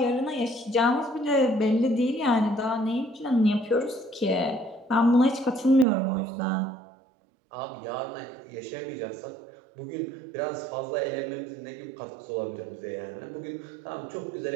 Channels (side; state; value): left; drops out; at 5.9 s